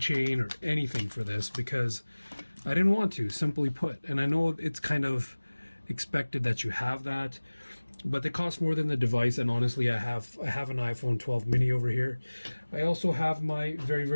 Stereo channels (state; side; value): inverted; both; correlation -1.00